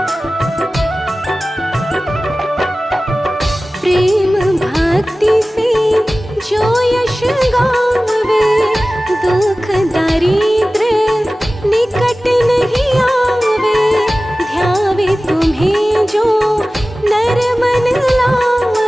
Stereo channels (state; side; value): normal; both; correlation 0.97